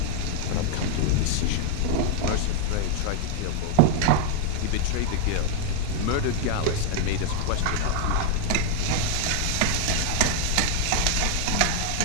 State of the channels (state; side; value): different; both; correlation 0.00